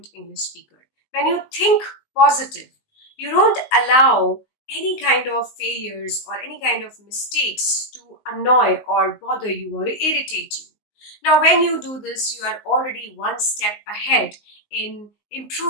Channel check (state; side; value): late; right; 19 ms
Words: English speaker. When you think positive, you don't allow any kind of failures or any kind of mistakes to annoy or bother you or irritate you. Now, when you do this, you are already one step ahead in